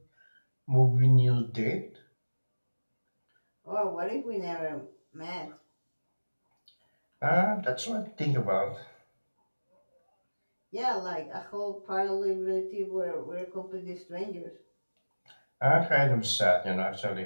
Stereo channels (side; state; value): both; inverted; correlation -1.00